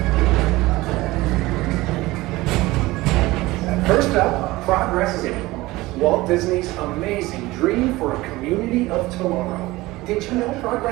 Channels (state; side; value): quieter; left; 19.4 dB